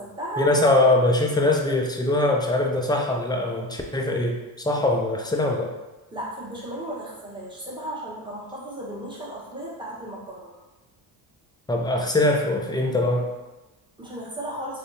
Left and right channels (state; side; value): normal; both; correlation 0.30